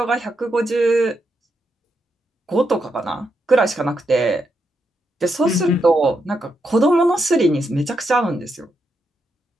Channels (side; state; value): both; normal; correlation 0.82